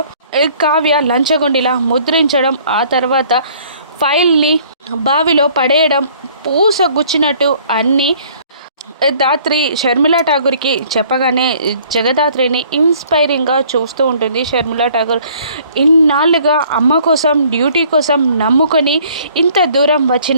కావ్య లంచగొండిలా ముద్రించడం, ఆ తర్వాత ఫైల్ని బావిలో పడేయడం, పూస గుచ్చినట్టు అన్నీ దాత్రి షర్మిలా ఠాగూర్కి చెప్పగానే జగదాత్రిని ఇన్స్పైరింగ్గా చూస్తూ ఉంటుంది. షర్మిలా ఠాగూర్ ఇన్నాళ్ళుగా అమ్మ కోసం డ్యూటీ కోసం నమ్ముకొని ఇంత దూరం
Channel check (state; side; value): inverted; both; correlation -0.57